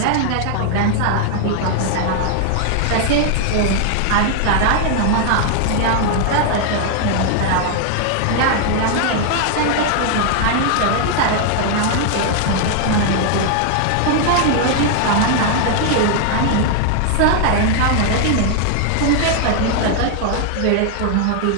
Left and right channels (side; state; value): both; different; correlation 0.00